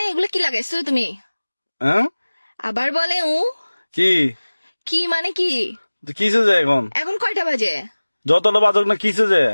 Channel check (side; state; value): both; inverted; correlation -1.00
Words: এগুলো কি লাগাইছো তুমি? হ্যাঁ। আবার বলে কি কি মানে কি? কিসে যে এখন এখন কয়টা বাজে? যতটা বাজক না কিসে যে।